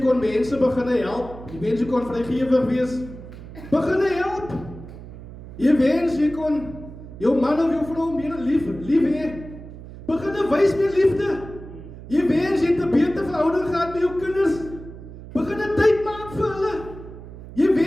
mense begin help. Jy wens jy kon vrygewig wees. Begin help. Jy wens jy kon jou man of jou vrou meer lief hê. Begin wys meer liefde. Jy wens jy het 'n beter verhouding gehad met jou kinders. Begin 'n tyd maak vir hulle. Jy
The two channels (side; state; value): right; noise; hum, 14 dB below the sound